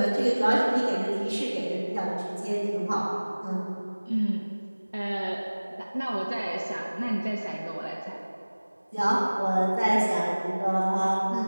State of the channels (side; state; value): both; inverted; correlation -1.00